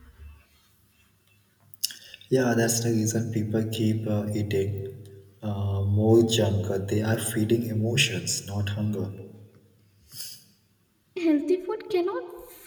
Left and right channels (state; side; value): identical; both; correlation 1.00